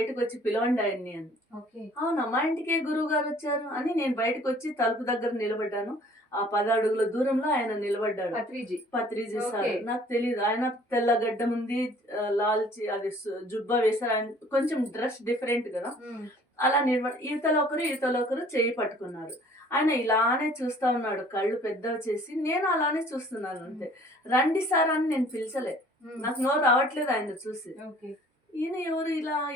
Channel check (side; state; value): both; normal; correlation 0.54